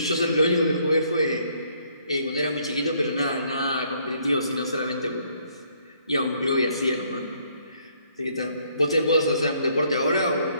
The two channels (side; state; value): both; inverted; correlation -0.67